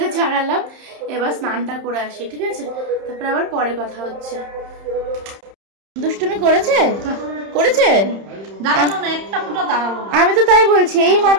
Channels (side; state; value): left; late; 31 ms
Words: ছাড়ালাম, এবার স্নানটা করে আসি, ঠিক আছে? তারপরে আবার পরে কথা হচ্ছে। দুষ্টুমি করেছে? আমি তো তাই বলছি, এই